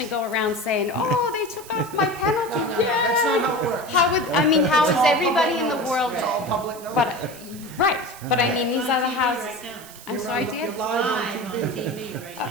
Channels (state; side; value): noise; right; hiss, 18 dB below the sound